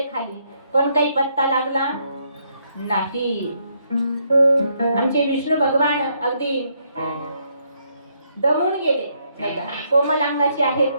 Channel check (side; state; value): both; inverted; correlation -0.73